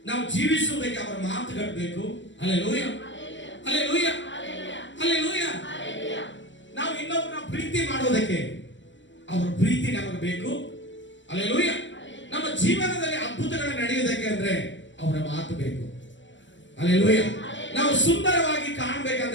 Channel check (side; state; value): right; late; 0.54 ms